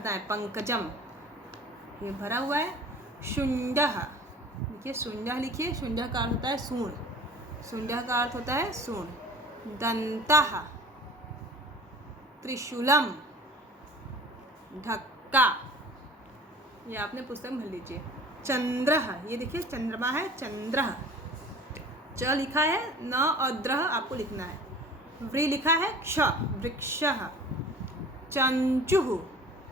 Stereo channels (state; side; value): normal; both; correlation 0.44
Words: है। पंकजम, ये भरा हुआ है। शुंडः, देखिए शुंडः लिखिए, शुंडः का अर्थ होता है सूंड, शुंडः का अर्थ होता है सूंड। दंतः, त्रिशूलम, ढक्का, ये आपने पुस्तक में भर लीजिए। चंद्रः, ये देखिए चंद्रमा है, चंद्रः, च लिखा है, न और द्रह आपको लिखना है। व्री लिखा है, क्ष, वृक्षः। चंचुः,